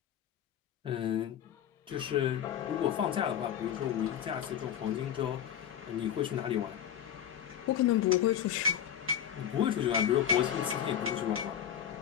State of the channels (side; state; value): right; quieter; 9.6 dB